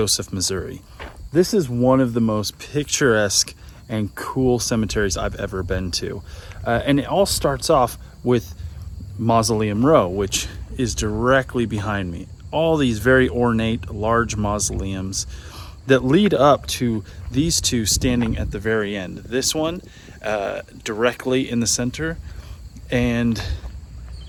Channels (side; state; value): both; identical; correlation 1.00